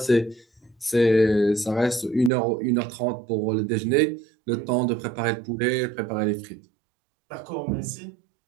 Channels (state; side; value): drops out; left; at 2.3 s